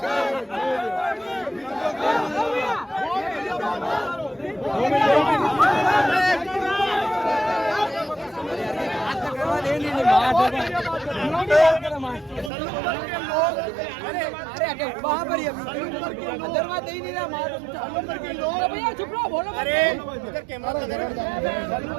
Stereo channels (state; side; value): drops out; left; at 12.5 s